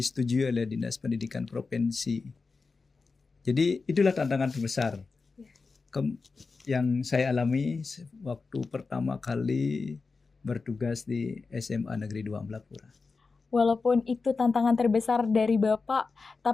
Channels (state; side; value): quieter; right; 4.3 dB